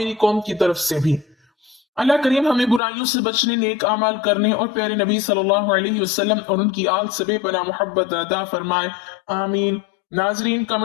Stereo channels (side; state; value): right; drops out; at 2.8 s